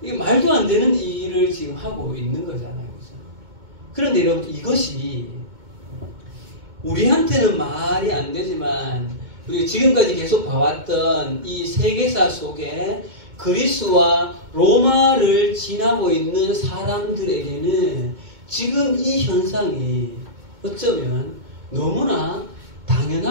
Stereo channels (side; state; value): left; late; 2.2 ms